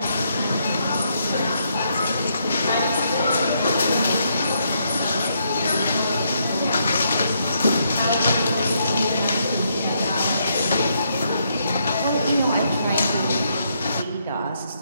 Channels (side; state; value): both; inverted; correlation -0.76